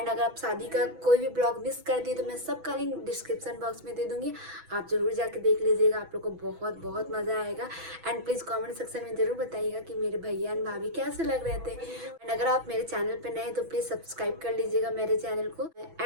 अगर आप शादी का कोई भी ब्लॉग मिस कर दिए तो मैं सबका लिंक डिस्क्रिप्शन बॉक्स में दे दूँगी, आप ज़रूर जाके देख लीजिएगा, आप लोग को बहुत बहुत मज़ा आएगा। एंड प्लीज़ कॉमेंट सेक्शन में ज़रूर बताइएगा कि मेरे भैया एंड भाभी कैसे लग रहे थे। एंड अगर आप मेरे चैनल पर नए हैं तो प्लीज़ सब्सक्राइब कर लीजिएगा मेरे चैनल को।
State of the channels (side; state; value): left; late; 6.1 ms